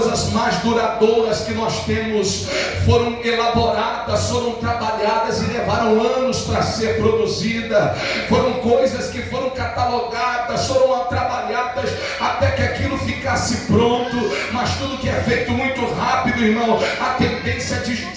mais duradouras que nós temos foram elaboradas, foram trabalhadas e levaram anos para ser produzida. Foram coisas que foram catalogadas, foram trabalhadas até que aquilo ficasse pronto. Mas tudo que é feito muito rápido, irmão, a tendência de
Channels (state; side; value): identical; both; correlation 1.00